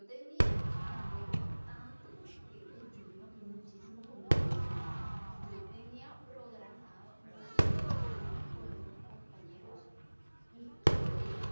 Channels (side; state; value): both; inverted; correlation -1.00